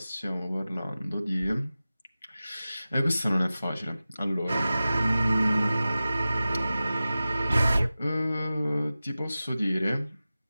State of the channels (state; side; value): inverted; both; correlation -0.96